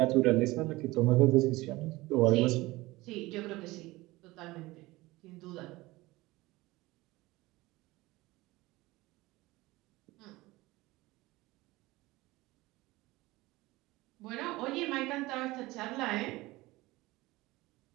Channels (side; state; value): left; quieter; 20.1 dB